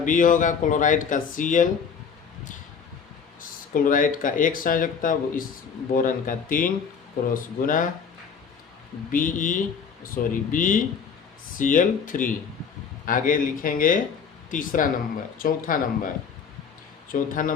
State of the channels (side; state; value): right; quieter; 6.4 dB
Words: होगा, क्लोराइड का Cl, क्लोराइड का 1 संयोजकता, इस बोरन का 3 क्रॉस गुना BeCl3। आगे लिखेंगे चौथा